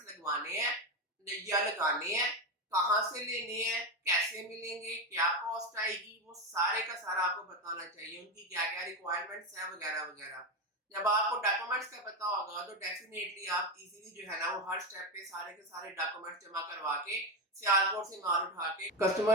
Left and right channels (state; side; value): normal; both; correlation 0.13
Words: लगवाने हैं या लगाने हैं, कहाँ से लेने हैं, कैसे मिलेंगे, क्या कॉस्ट आएगी, वो सारे का सारा आपको बताना चाहिए, उनकी क्या क्या रिक्वायरमेंट्स है वगैरह वगैरह। जब आपको डॉक्यूमेंट्स का पता होगा तो डेफिनेटली आप इजीली जो है ना वो हर स्टेप पे सारे के सारे डॉक्यूमेंट्स जमा करवा के सियालकोट से माल उठा के